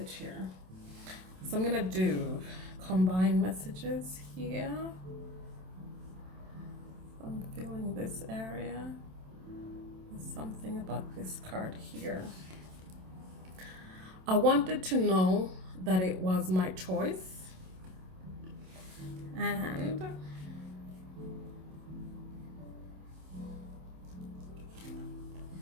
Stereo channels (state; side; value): late; left; 27 ms